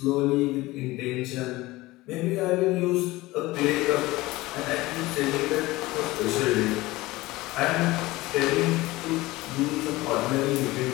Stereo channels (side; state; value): right; quieter; 19.6 dB